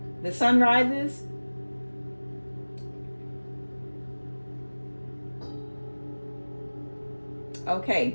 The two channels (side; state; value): both; inverted; correlation -1.00